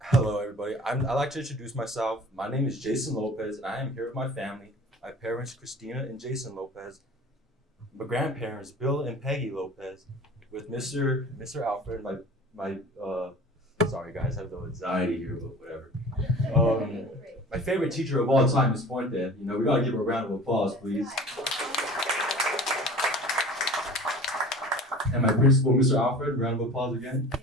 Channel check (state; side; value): normal; both; correlation 0.42